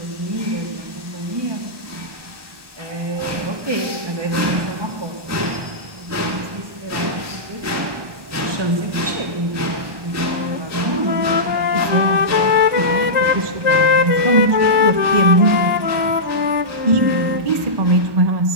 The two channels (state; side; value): late; left; 1.2 ms